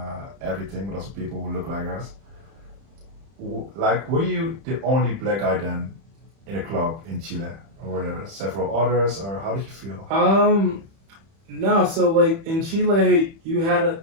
everything, but also people who look like us. Like, were you the only black guy then in a club in Chile, or were there several others, or how did you feel? No. So like in Chile, you had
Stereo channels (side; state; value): left; late; 30 ms